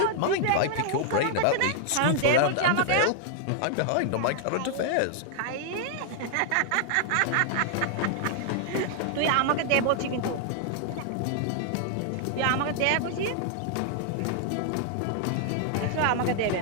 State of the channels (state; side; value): different; both; correlation 0.00